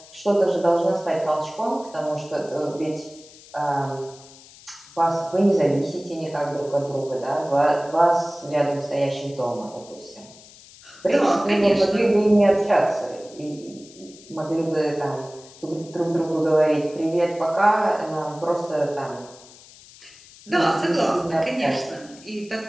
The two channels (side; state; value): left; noise; hiss, 22 dB below the sound